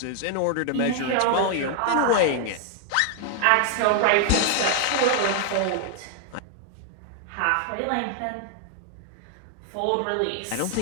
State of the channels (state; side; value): different; both; correlation 0.00